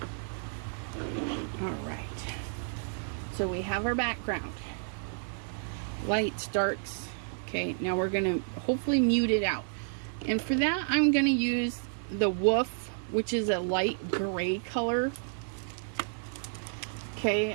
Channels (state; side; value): silent; left; digital silence